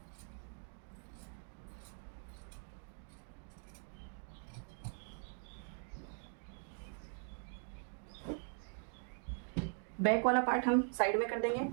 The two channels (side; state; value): left; silent; 50 dB below the other